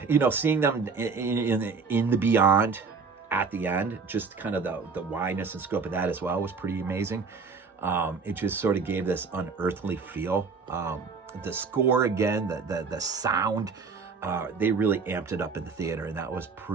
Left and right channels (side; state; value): left; quieter; 5.0 dB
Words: Seeing them in the beyond at the end, just kind of the wideness and scope of that as well was pretty amazing. It just sort of gave this unearthly feel. The score again, the sound, they really amped it up in the theater, and that was